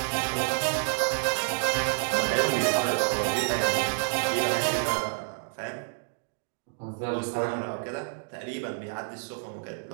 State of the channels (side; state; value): left; silent; digital silence